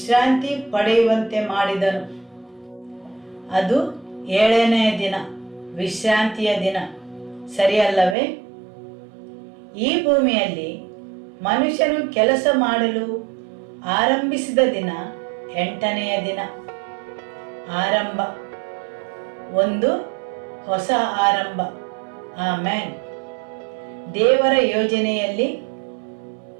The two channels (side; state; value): left; drops out; at 8.2 s